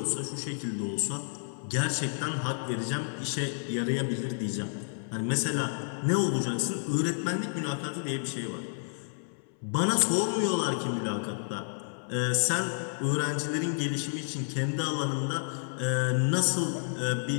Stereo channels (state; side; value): silent; right; 58 dB below the other